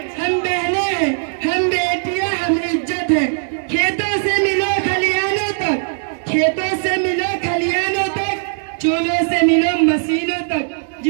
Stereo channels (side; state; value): left; silent; digital silence